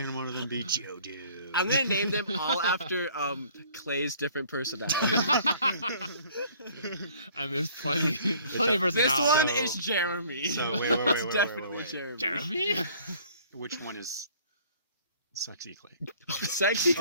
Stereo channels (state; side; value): inverted; both; correlation -0.55